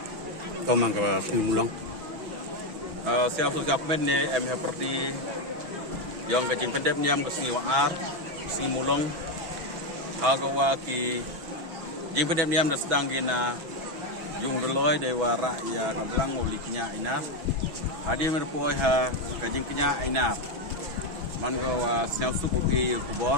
Kau mangga sini mulang. Siap men ni seperti yang kecing pendep niam ke sini waar, sini mulang. Agawa ki jing pendep niam dah sedang gina yung doloi dewa ya kablang uliknya inas. Hadi merpoi ha kecing kenya inas. Man gawa siap suku ki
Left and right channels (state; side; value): late; left; 6.1 ms